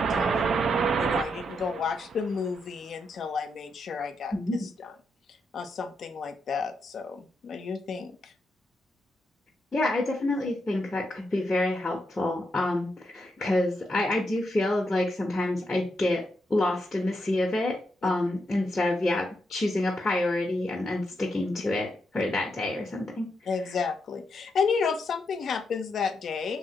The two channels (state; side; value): normal; both; correlation 0.82